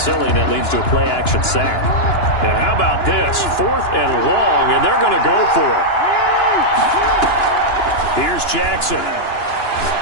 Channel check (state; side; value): late; right; 2.9 ms